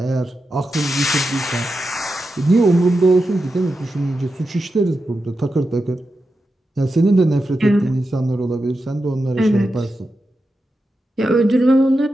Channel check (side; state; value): both; normal; correlation 0.89